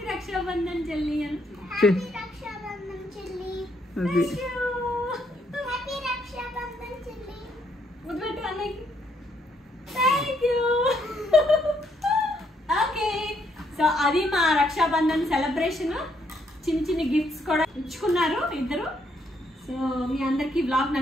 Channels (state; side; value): normal; both; correlation 0.73